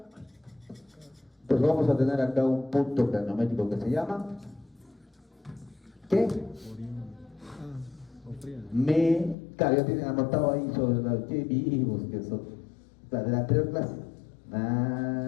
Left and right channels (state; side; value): drops out; right; at 9.3 s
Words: pues vamos a tener acá un punto craniométrico que se llama ¿qué? Claro, ya tienen anotado ahí sobre los que vivos que son la de la anterior clase.